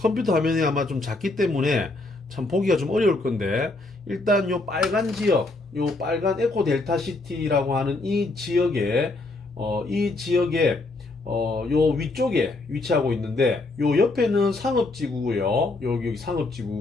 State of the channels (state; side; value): quieter; right; 3.1 dB